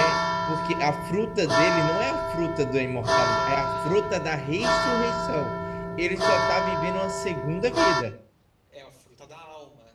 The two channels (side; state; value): both; identical; correlation 1.00